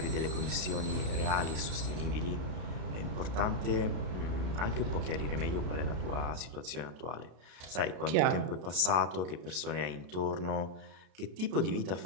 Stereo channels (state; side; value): late; left; 33 ms